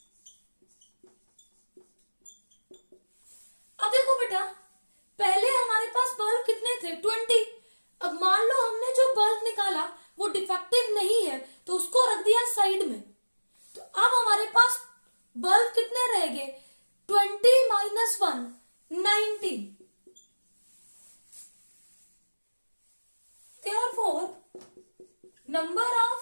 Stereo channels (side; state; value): both; inverted; correlation -1.00